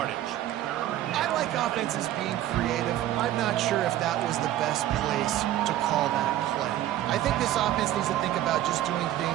I like offenses being creative. I'm not sure if that was the best place to call that play. I think this offense needs to think about just doing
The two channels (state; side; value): quieter; left; 13.2 dB